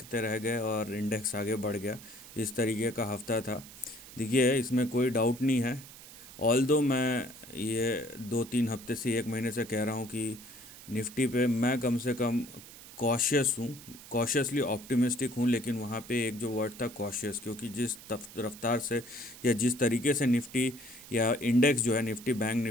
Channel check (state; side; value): noise; right; hiss, 17 dB below the sound